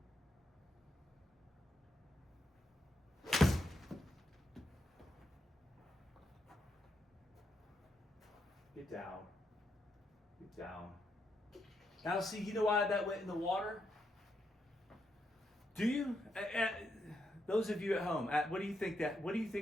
Get down. Get down. Now see, you know why that went in the water? Do you? Those of you at home, what do you think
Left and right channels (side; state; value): both; normal; correlation 0.81